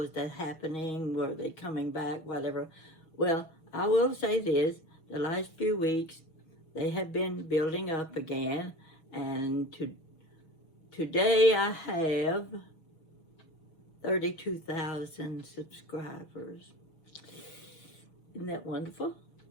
that happening, were they coming back, whatever. Well, I will say this, the last few weeks they have been building up again, and today I have 32,000 subscribers. Isn't that wonderful?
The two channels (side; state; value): right; late; 6.3 ms